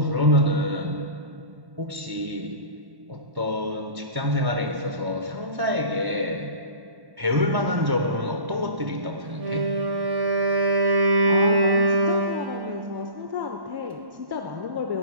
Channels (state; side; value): late; left; 1.1 ms